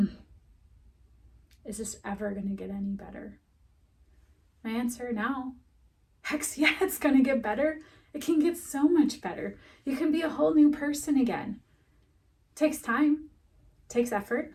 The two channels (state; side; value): identical; both; correlation 1.00